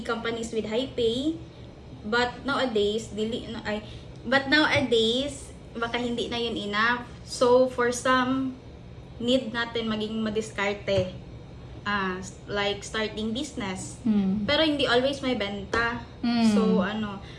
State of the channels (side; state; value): both; identical; correlation 1.00